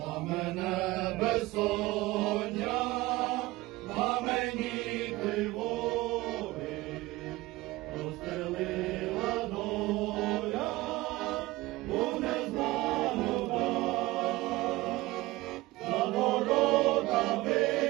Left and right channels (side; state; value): left; quieter; 19.7 dB